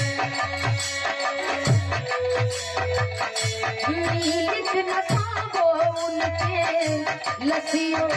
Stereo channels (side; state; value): both; identical; correlation 1.00